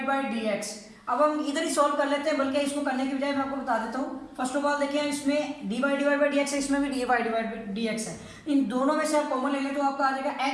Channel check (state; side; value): identical; both; correlation 1.00